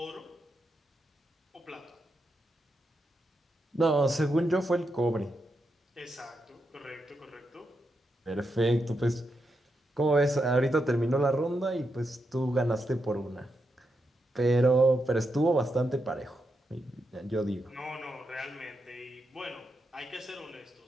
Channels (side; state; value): both; normal; correlation 0.84